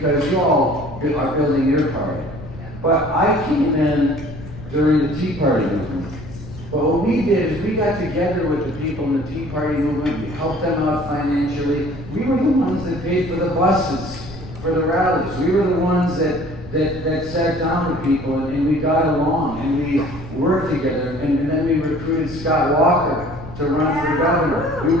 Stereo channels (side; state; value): left; noise; rumble, 14 dB below the sound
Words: you all are building your party. But I came in during the Tea Party movement. But what we did is we got together with the people in the Tea Party movement, we helped them out financially. We were the ones that paid for the buses, for the rallies. We were the ones that sat down with people and we got along and we worked together. And then we recruited Scott Walker to run for governor. We